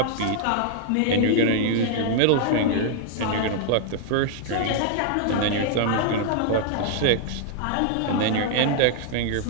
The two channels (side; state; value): both; different; correlation 0.00